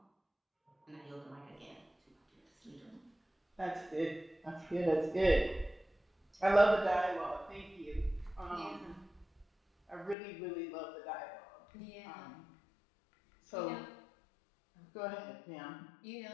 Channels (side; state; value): right; drops out; at 10.2 s